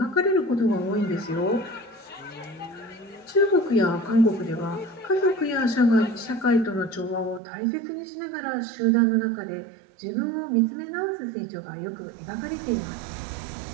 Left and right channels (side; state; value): left; drops out; at 7.4 s